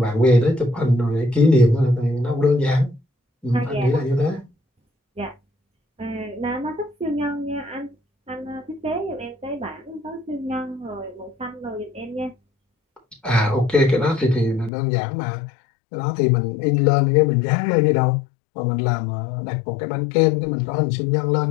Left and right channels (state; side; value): drops out; right; at 14.7 s